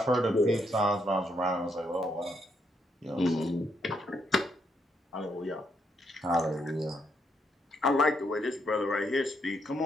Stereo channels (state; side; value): normal; both; correlation 0.76